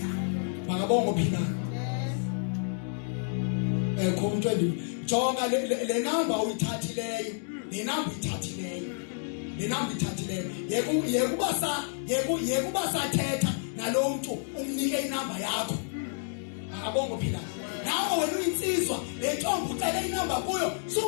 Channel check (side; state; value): right; silent; digital silence